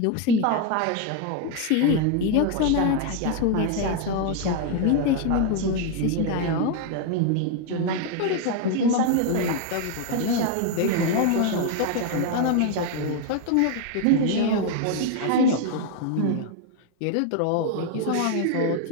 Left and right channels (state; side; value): different; both; correlation 0.01